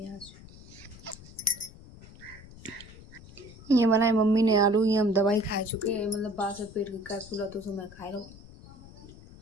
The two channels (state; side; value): noise; left; rumble, 19 dB below the sound